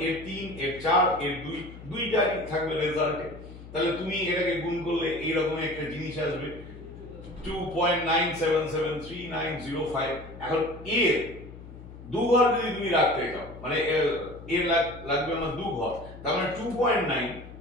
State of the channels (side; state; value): left; noise; hum, 15 dB below the sound